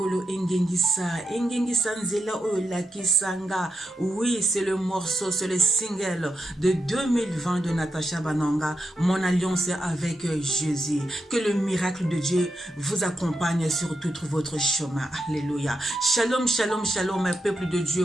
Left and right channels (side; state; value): both; normal; correlation 0.85